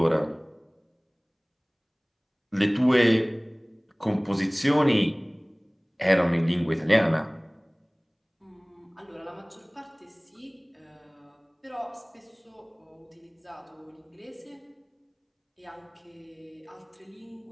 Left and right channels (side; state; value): both; identical; correlation 1.00